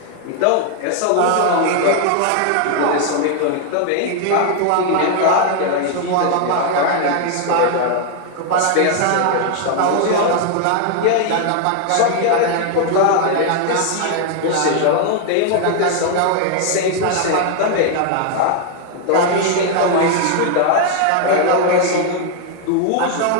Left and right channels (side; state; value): both; different; correlation 0.00